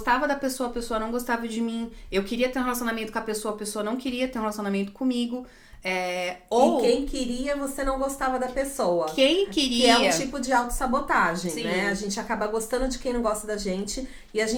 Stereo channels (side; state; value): both; identical; correlation 1.00